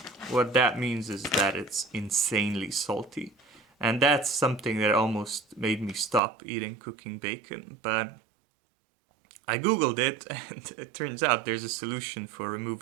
what that means is that it's insanely salty. And that's something that almost made me stop eating cooking bacon. But I googled it, and it turns out there's a solution for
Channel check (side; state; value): left; drops out; at 6.2 s